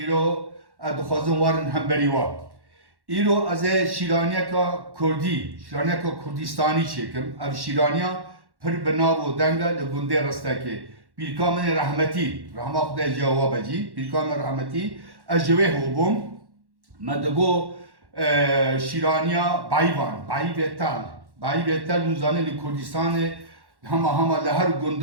îro ez dixwazim warin hemberî wa. İro ez ê şîraniyeka Kurdî, şîraniyeka Kurdistanî çêkim. Ev şîraniya pir bi nav û deng e li gundê Ristekê. Pîrka min ê rehmetî, rahma Xwedê cewab cî, pîrka min rehmetî, ez ji wê hûbûm. Me digo şîraniya Bayvan, Bayî Tel. Bayî Tel hûn zanîn li Kurdistanê hema li her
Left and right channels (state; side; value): late; left; 1.1 ms